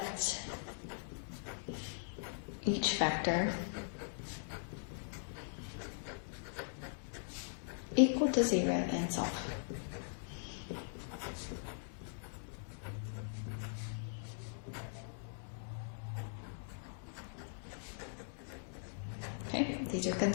each factor equal to 0 and solve. Okay, these are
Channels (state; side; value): silent; right; digital silence